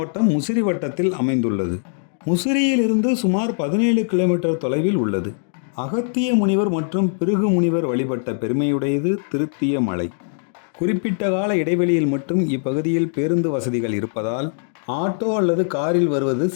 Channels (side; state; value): right; silent; digital silence